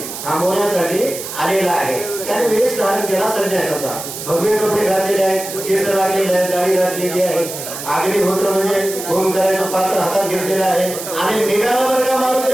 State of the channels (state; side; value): noise; right; hiss, 9 dB below the sound